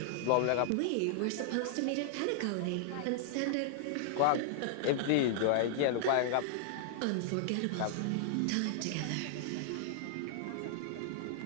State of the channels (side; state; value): both; different; correlation -0.01